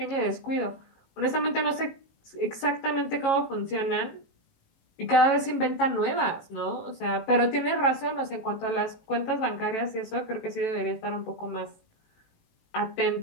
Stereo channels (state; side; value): late; right; 18 ms